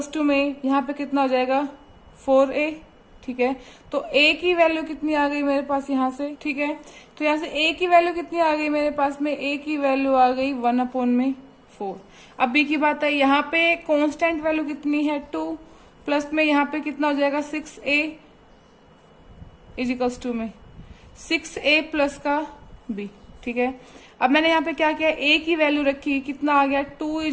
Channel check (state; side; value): identical; both; correlation 1.00